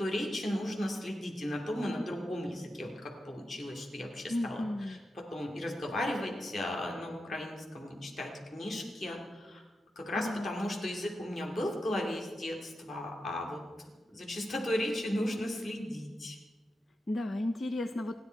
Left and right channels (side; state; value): both; normal; correlation 0.89